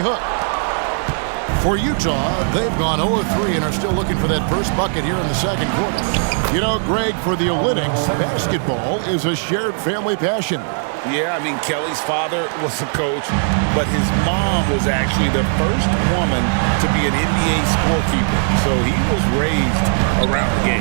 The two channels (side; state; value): left; silent; digital silence